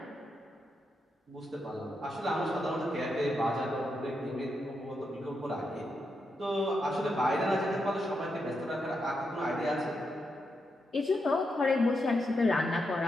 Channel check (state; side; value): normal; both; correlation 0.84